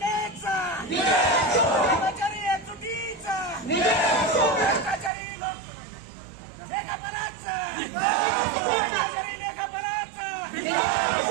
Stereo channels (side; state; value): left; drops out; at 5.1 s